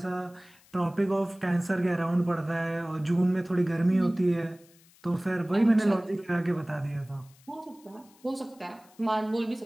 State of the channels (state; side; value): noise; left; hiss, 28 dB below the sound